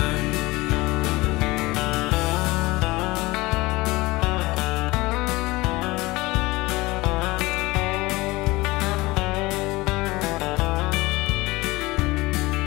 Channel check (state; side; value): quieter; right; 21.4 dB